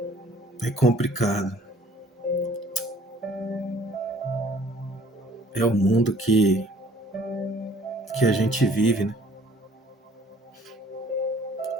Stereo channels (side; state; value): both; normal; correlation 0.56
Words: complicado. É o mundo que que a gente vive, né?